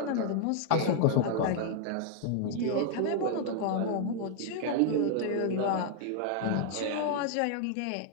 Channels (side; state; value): both; different; correlation 0.00